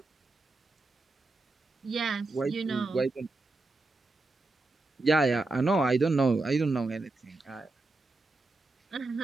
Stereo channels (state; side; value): quieter; left; 3.3 dB